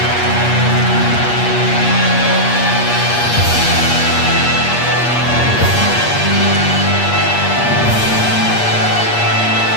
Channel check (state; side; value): late; right; 8.4 ms